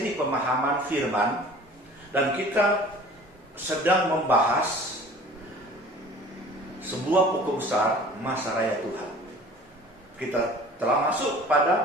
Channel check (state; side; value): normal; both; correlation 0.46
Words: pemahaman firman, dan kita sedang membahas sebuah pokok besar masa raya Tuhan. Kita telah masuk